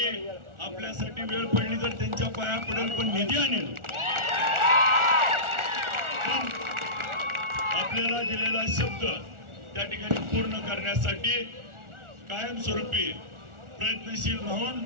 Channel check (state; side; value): late; left; 1.4 ms